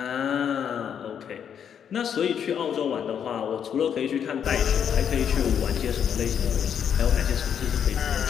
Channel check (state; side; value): quieter; right; 8.3 dB